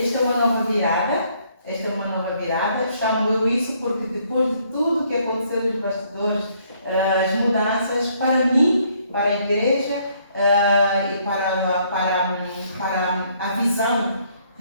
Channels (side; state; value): both; inverted; correlation -0.67